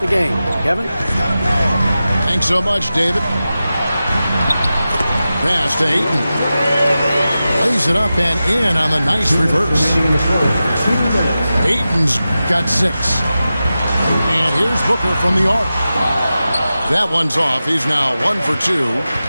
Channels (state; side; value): inverted; both; correlation -0.93